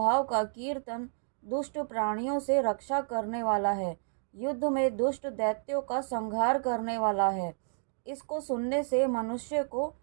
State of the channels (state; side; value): silent; left; digital silence